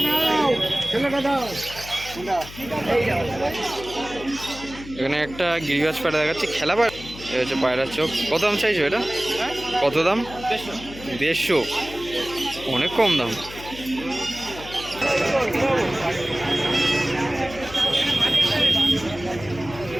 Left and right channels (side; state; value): left; noise; hum, 15 dB below the sound